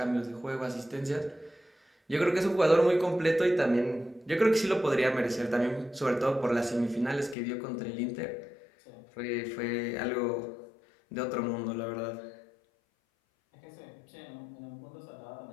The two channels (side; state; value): right; drops out; at 7.4 s